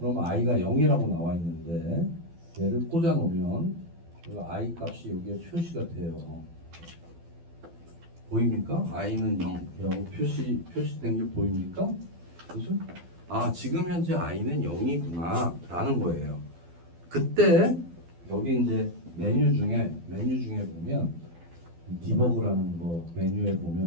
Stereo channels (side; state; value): left; late; 12 ms